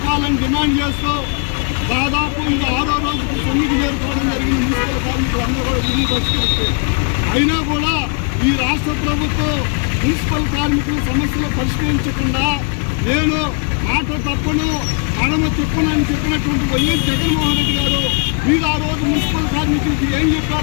డిమాండ్ చేస్తూ దాదాపు ఇది 6వ రోజుకి సమ్మెకి చేరుకోవడం జరిగిన మున్సిపల్ కార్మికులు అందరూ కూడా విధులు బహిష్కరించి, అయినా కూడా ఈ రాష్ట్ర ప్రభుత్వం మున్సిపల్ కార్మికుల సమస్యలు పరిష్కరించకుండా నేను మాట తప్పను మడమ చెప్పునని చెప్పినటువంటి వైఎస్ జగన్మోహన్ రెడ్డి గారు మీరు ఆ రోజు మున్సిపల్ కార్మికులకి ఏం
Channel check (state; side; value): quieter; right; 35.3 dB